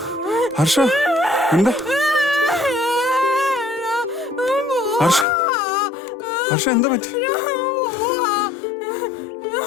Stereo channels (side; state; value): right; drops out; at 5.2 s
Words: ഹർഷ, എന്താ? ഹർഷ, ഹർഷ, എന്താ പറ്റി?